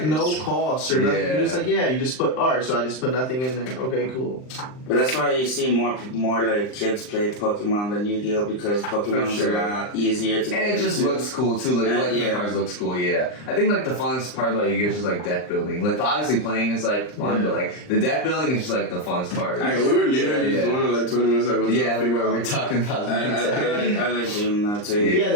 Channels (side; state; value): right; late; 39 ms